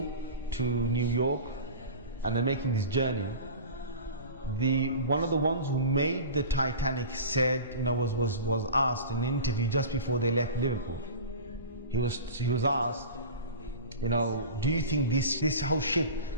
to New York, and they're making this journey, one of the ones who made the Titanic said, was asked in an interview just before they left Liverpool. He was asked, do you think this whole ship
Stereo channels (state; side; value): inverted; both; correlation -0.34